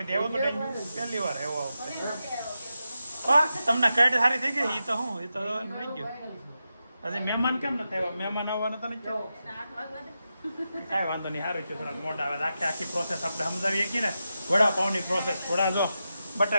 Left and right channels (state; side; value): inverted; both; correlation -0.89